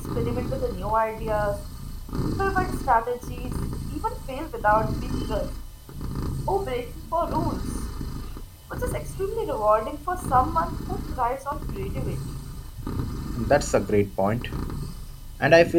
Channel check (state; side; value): identical; both; correlation 1.00